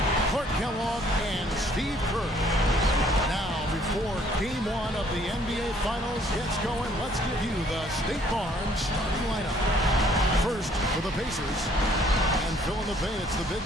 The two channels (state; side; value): normal; both; correlation 0.62